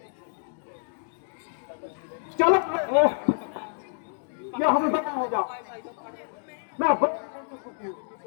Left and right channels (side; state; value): right; silent; 59 dB below the other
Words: चलो या हमें बता हो जाओ। मैं